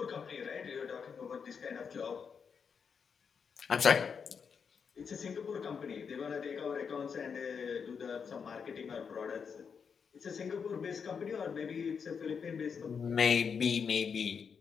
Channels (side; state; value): right; quieter; 6.3 dB